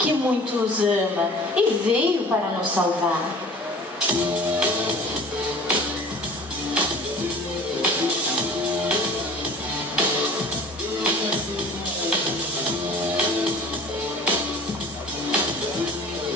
muito nos ama e veio para nos salvar.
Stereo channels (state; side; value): normal; both; correlation 0.44